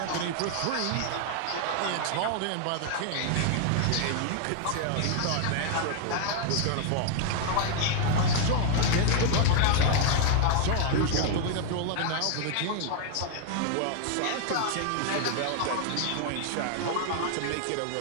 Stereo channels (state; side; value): different; both; correlation 0.00